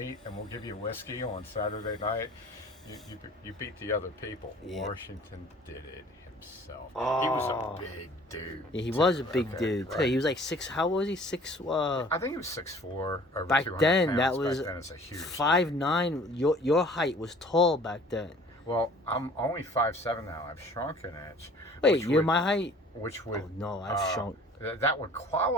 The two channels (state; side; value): normal; both; correlation 0.50